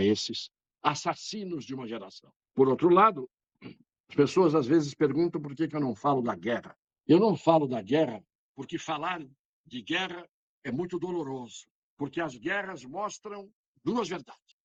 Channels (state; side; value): identical; both; correlation 1.00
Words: esses assassinos de uma geração. Por outro lado, as pessoas às vezes perguntam por que eu não falo da guerra. Eu não falo da guerra porque falar de guerra é muito doloroso, porque as guerras mostram duas verdades.